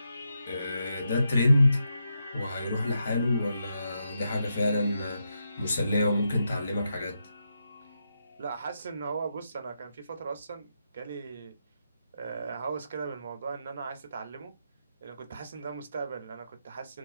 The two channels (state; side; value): inverted; both; correlation -0.84